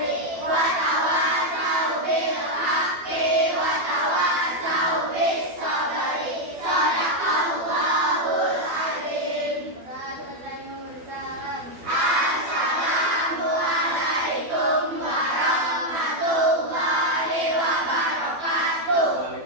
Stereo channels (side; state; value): left; late; 12 ms